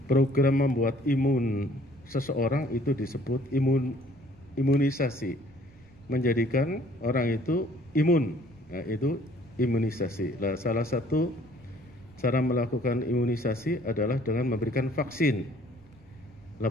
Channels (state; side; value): noise; right; rumble, 26 dB below the sound